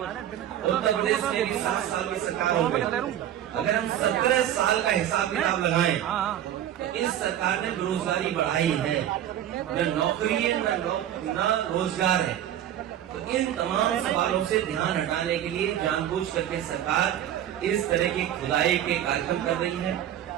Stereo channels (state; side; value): quieter; left; 11.2 dB